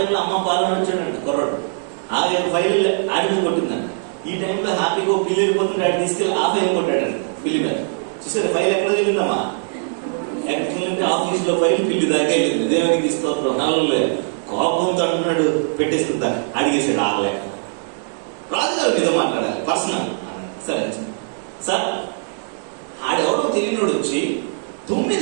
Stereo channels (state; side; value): silent; left; 60 dB below the other